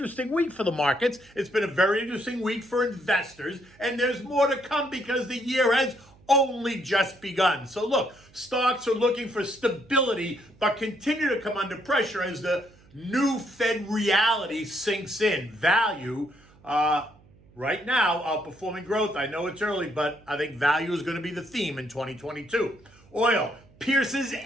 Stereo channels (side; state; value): right; noise; hum, 27 dB below the sound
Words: week for the markets. It's been a very interesting week for investors. And there's more to come because the year has only just begun. So look, stocks are looking for stability, but continue to come under pressure as the new Fed reality sinks in. Value, right now, outperforming growth. I know it's early, but I think value is going to be the theme in 2022. Oil pierces